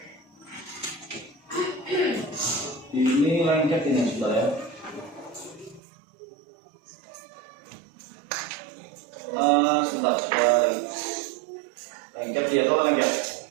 Ini lengket ini sudah ya. Sebentar. Lengket dia atau lengket?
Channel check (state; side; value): drops out; left; at 5.8 s